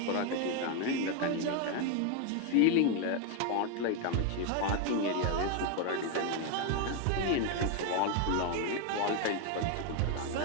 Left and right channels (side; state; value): both; different; correlation 0.01